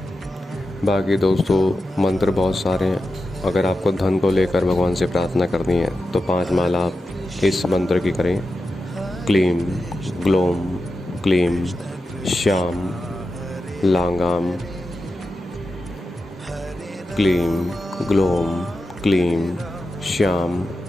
बाकी दोस्तों मंत्र बहुत सारे हैं। अगर आपको धन को लेकर भगवान से प्रार्थना करनी है तो 5 माला आप इस मंत्र की करें। क्लीम ग्लोम क्लीम श्याम लांगाम, क्लीम ग्लोम क्लीम श्याम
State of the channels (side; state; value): both; normal; correlation 0.90